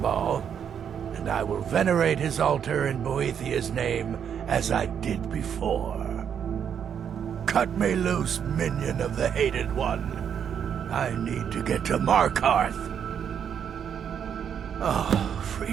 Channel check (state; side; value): quieter; left; 8.1 dB